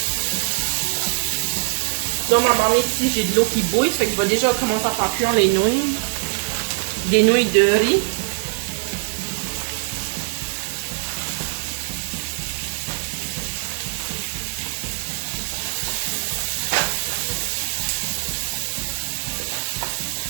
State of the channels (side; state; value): left; silent; digital silence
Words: Dans ma marmite ici, j'ai de l'eau qui bouille, fait que je vais déjà commencer à faire cuire les nouilles. Des nouilles de riz.